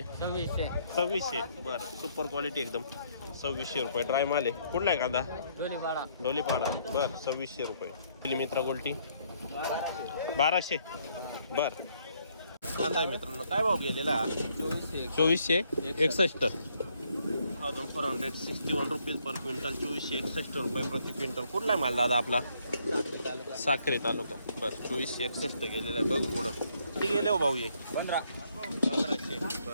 2600. बरं सुपर क्वालिटी एकदम. 2600 रुपये ड्राय माल आहे. कुठला आहे कांदा? डोलीपाडा. बरं 2600 रुपये. मित्रा गोल्टी 1200. बरं कांदा आहे मित्रांनो. काय भाव गेलेला? 2461. 1461 रुपीज पर क्विंटल. 2461 रुपये प्रति क्विंटल. कुठला आहे माल दादा आपला? साखरे तालुका. बरं 2461 गेलेला आहे. बघू पुढं किती गेले हो भाऊ? ये 1500.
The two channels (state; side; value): inverted; both; correlation -0.69